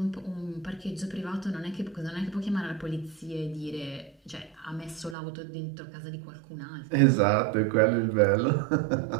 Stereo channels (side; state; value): left; drops out; at 5.2 s